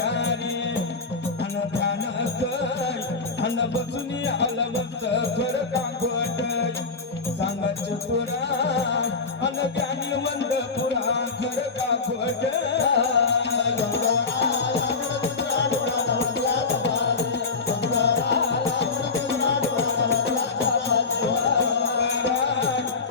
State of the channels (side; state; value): right; quieter; 4.4 dB